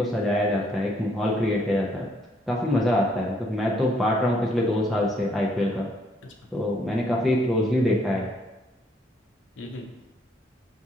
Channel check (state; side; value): normal; both; correlation 0.68